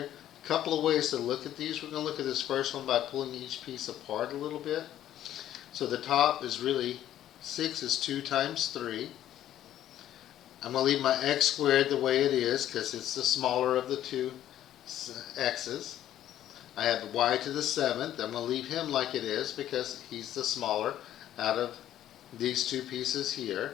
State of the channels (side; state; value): right; quieter; 12.0 dB